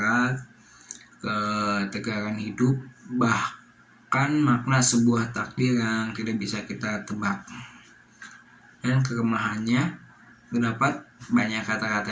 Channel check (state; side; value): identical; both; correlation 1.00